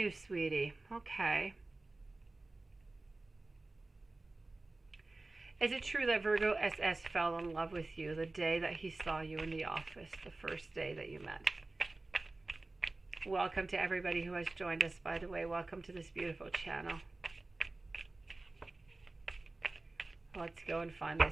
sweetie. Okay. Is it true that Virgo SS fell in love with you the day that he saw you in the office, the first day that you met? Welcome to everybody who has joined us, by the way. Welcome to this beautiful channel. Let's go and find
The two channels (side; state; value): left; quieter; 3.1 dB